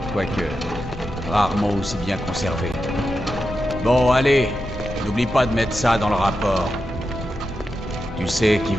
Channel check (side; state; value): both; normal; correlation 0.89